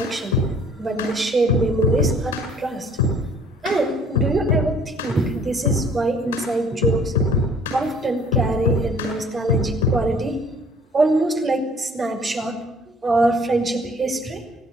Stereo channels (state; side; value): normal; both; correlation 0.55